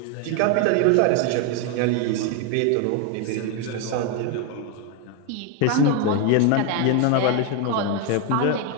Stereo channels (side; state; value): both; different; correlation 0.01